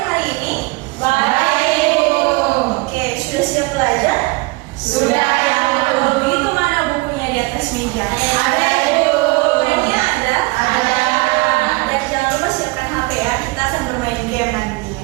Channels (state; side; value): quieter; left; 25.2 dB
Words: hari ini? Baik, Ibu. Oke, sudah siap belajar? Sudah, Ibu. Kalau begitu mana bukunya di atas meja? Ada, Ibu. Bukunya ada? Ada. Dan jangan lupa siapkan HP ya. Kita akan bermain game